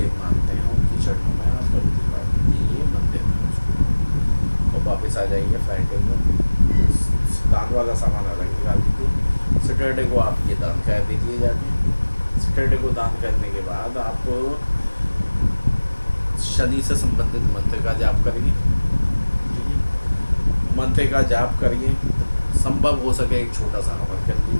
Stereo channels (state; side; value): inverted; both; correlation -1.00